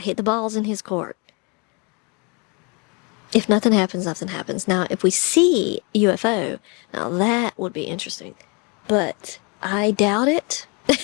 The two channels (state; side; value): quieter; right; 32.2 dB